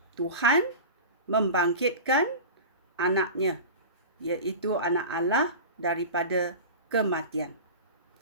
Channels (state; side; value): inverted; both; correlation -0.31